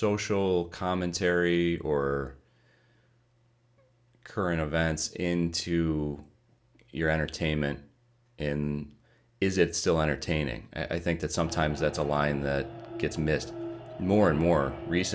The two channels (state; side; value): identical; both; correlation 1.00